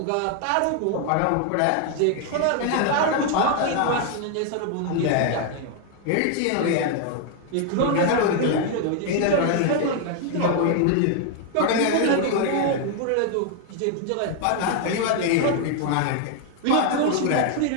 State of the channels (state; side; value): different; both; correlation 0.00